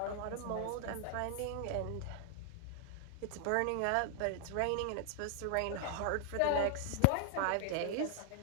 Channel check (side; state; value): both; different; correlation 0.00